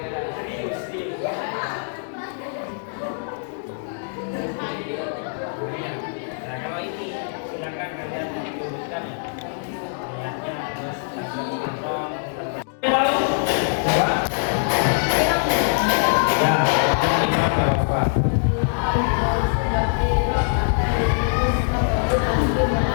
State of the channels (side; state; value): right; silent; digital silence